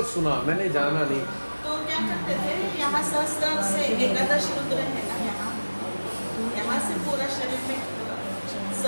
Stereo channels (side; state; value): both; inverted; correlation -1.00